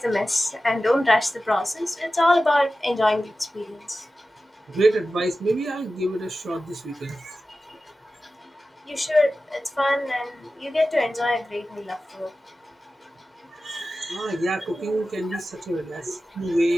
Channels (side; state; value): both; normal; correlation 0.94